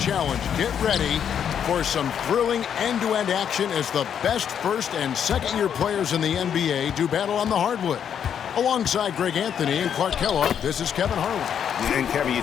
Challenge. Get ready for some thrilling end-to-end action as the best first and second-year players in the NBA do battle on the hardwood. Alongside Greg Anthony and Clark Kellogg, this is Kevin Harlan. And Kevin, you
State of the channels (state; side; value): quieter; right; 8.5 dB